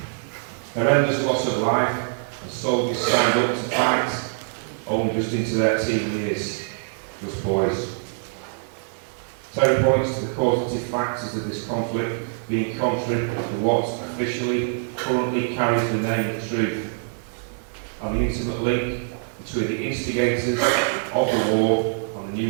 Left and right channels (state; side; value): silent; left; digital silence